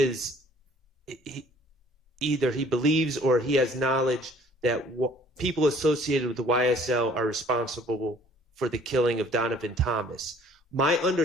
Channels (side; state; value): both; normal; correlation 0.55